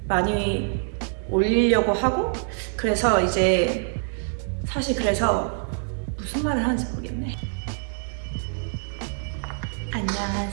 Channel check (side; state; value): left; silent; digital silence